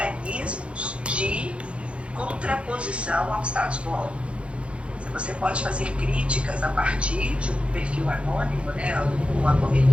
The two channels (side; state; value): left; late; 0.060 ms